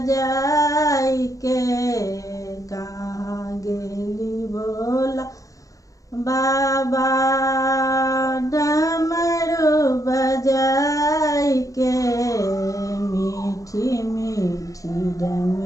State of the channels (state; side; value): late; right; 0.16 ms